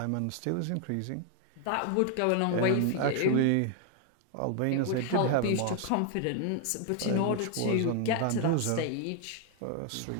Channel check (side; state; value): both; different; correlation 0.00